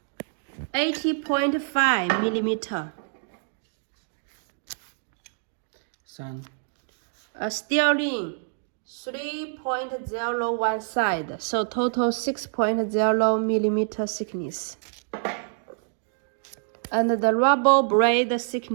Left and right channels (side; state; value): left; silent; digital silence